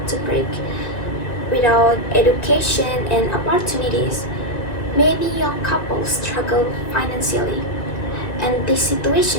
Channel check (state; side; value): late; right; 1.9 ms